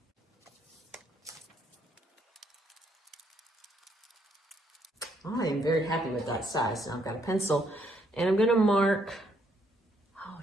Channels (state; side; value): normal; both; correlation 0.71